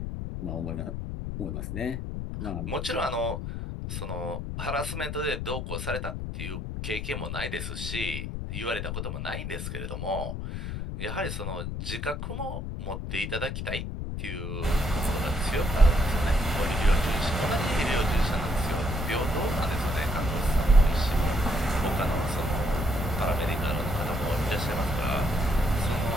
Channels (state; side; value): noise; left; rumble, 4 dB below the sound